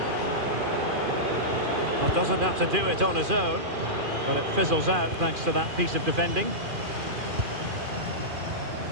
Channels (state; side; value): late; left; 2.5 ms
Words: Well, doesn't have to do it on his own, but it fizzles out thanks to that piece of defending.